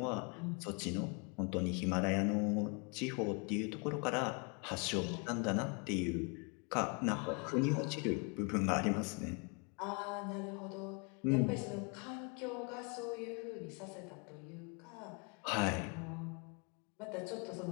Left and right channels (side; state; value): right; quieter; 34.1 dB